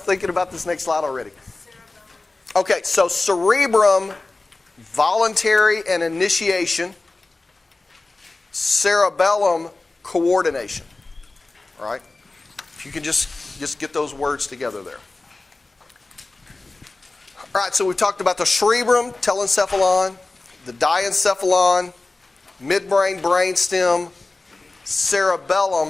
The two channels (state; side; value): quieter; right; 3.3 dB